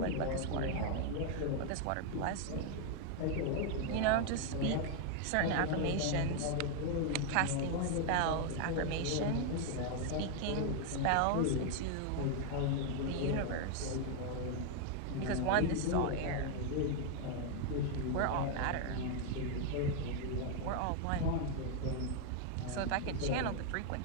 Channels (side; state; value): both; different; correlation 0.00